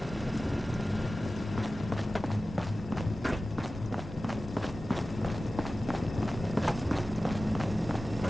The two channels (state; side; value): normal; both; correlation 0.96